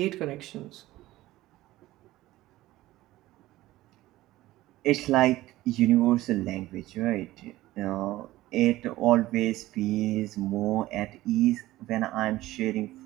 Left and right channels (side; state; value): left; quieter; 16.6 dB